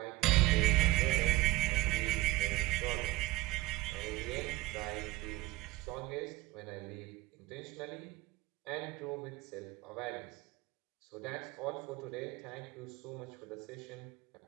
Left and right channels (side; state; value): left; quieter; 18.8 dB